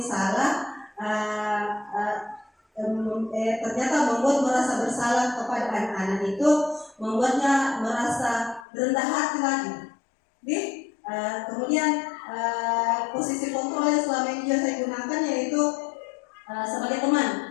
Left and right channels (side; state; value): right; drops out; at 8.7 s